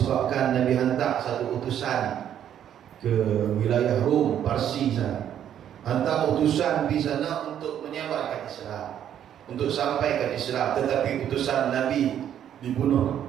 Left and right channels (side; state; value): left; quieter; 10.0 dB